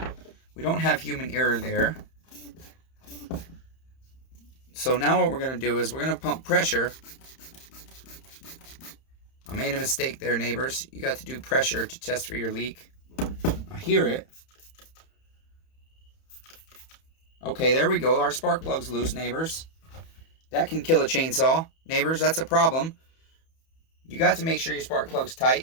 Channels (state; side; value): late; right; 31 ms